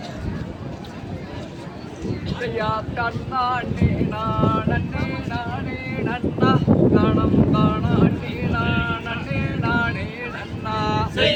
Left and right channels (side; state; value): both; identical; correlation 1.00